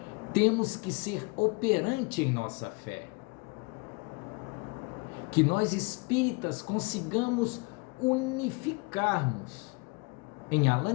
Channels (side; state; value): right; quieter; 27.4 dB